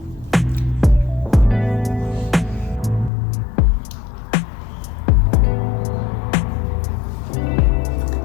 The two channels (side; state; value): right; drops out; at 3.1 s